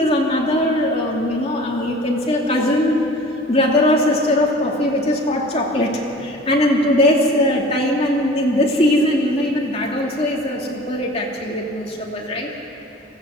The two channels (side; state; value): both; normal; correlation 0.43